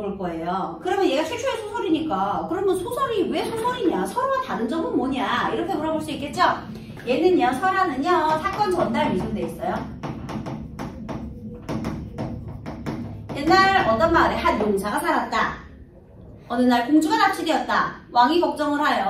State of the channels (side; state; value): both; identical; correlation 1.00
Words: 거예요. 그러면 얘가 최초의 소설이니까 그러면 소설이 왜 소설이냐? 설화와 다른 점은 뭐냐? 이렇게 물어볼 수 있겠죠? 얘는요, 설화는요, 사건 전달 위주로 돼 있어요. 옛날 어떤 마을에 한 용사가 살았다. 어느 날 공주가 납치되었다. 왕이 걱정을